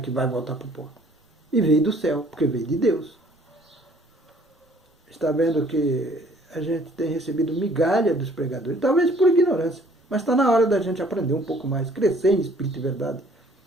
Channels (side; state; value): both; normal; correlation 0.58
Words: vai voltar para o pó. E veio do céu, porque veio de Deus. Está vendo que a gente tem recebido migalha dos pregadores, talvez por ignorância, mas está na hora da gente aprender um pouco mais, crescer em espírito e verdade,